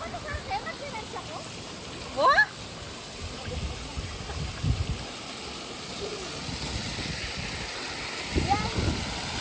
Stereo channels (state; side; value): identical; both; correlation 1.00